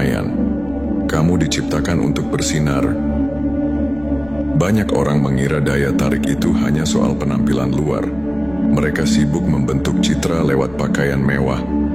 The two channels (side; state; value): left; noise; rumble, 20 dB below the sound